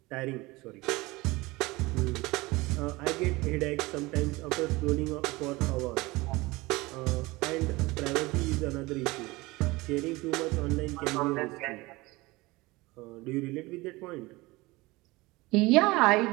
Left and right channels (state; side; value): quieter; left; 21.8 dB